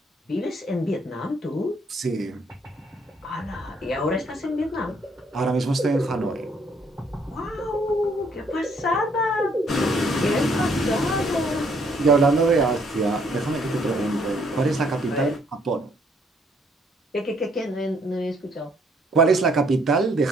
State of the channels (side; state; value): both; normal; correlation 0.66